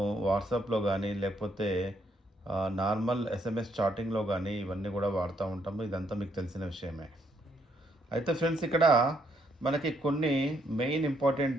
వాట్సాప్లో కానీ, లేకపోతే నార్మల్ ఎస్ఎంఎస్ చాటింగ్లో కానీ ఇవన్నీ కూడా వాడుతూ ఉంటాము. ఇదంతా మీకు తెలిసిన విషయమే. అయితే ఫ్రెండ్స్, ఇక్కడ మనకి కొన్ని మెయిన్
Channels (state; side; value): normal; both; correlation 0.72